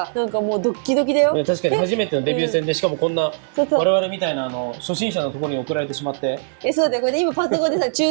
なんかもうドッキドキだよ。確かに初めてのデビュー戦で、しかもこんな我々みたいな初心者のところに送られてしまって。そうで、これ今パソコンでさ、チュ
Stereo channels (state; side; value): silent; left; digital silence